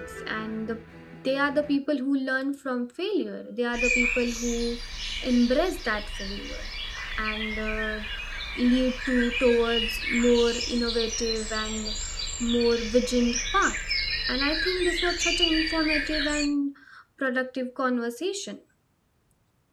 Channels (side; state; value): both; identical; correlation 1.00